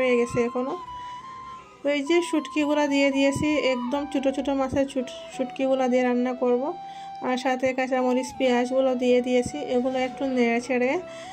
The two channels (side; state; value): both; identical; correlation 1.00